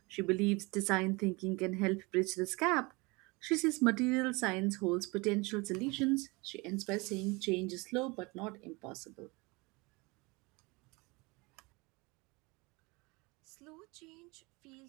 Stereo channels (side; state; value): left; quieter; 26.1 dB